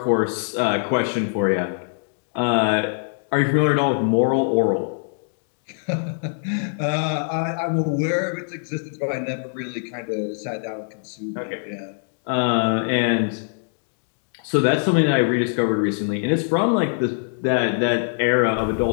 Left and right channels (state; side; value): silent; right; digital silence